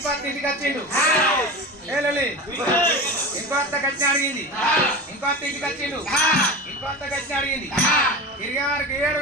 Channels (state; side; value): normal; both; correlation 0.28